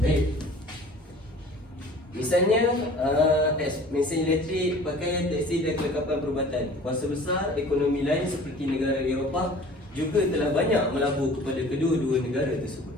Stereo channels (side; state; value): both; normal; correlation 0.46